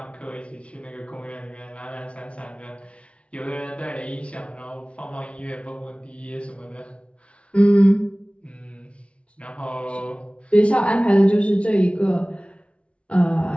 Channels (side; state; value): right; late; 0.061 ms